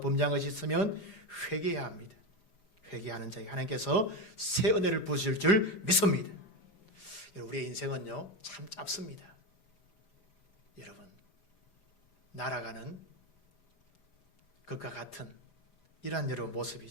것이 있으면 회개해야 합니다. 회개하는 자에게 하나님께서 새 은혜를 부으실 줄 믿습니다. 우리의 인생은요 참 짧습니다. 여러분 날아가는 것과 같은 이러한 여러분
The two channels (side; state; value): right; late; 4.9 ms